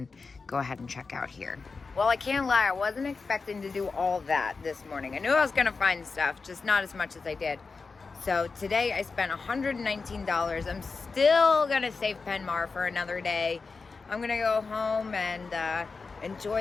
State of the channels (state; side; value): quieter; right; 4.4 dB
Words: go ahead and check out here. Well, I can't lie, I wasn't expecting to do all that this morning. I knew I was gonna find stuff, just not as much as I did. So today I spent $119. I'm still gonna save Penmar for another day. I'm gonna go home and